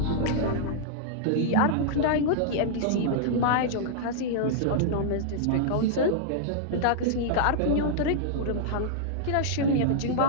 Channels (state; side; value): different; both; correlation -0.02